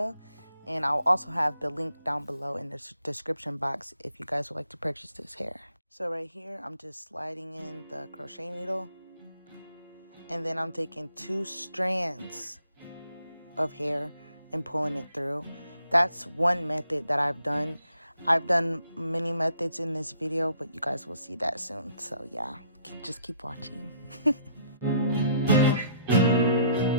And I'll also have the link down below in the description box if you guys would like to purchase this hair. So right here, I'm just sliding in the crochet needle. And then I'm taking 2 strands of hair and pulling it through. That's one method that I've done. I've done many methods in this video, but you guys will see that soon. So yeah, just keep watching.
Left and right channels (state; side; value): inverted; both; correlation -0.66